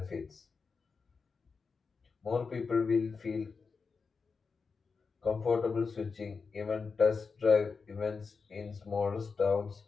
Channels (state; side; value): quieter; right; 5.0 dB